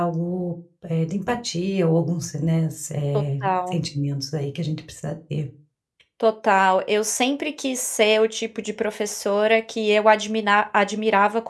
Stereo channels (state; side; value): identical; both; correlation 1.00